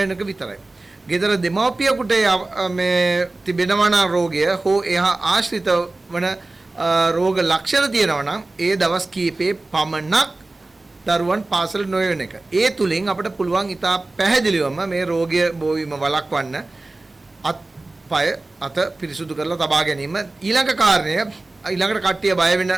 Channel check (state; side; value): quieter; left; 3.0 dB